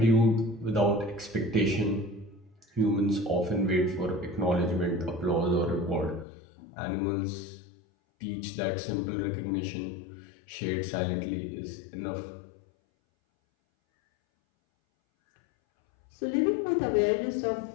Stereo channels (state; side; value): drops out; right; at 6.2 s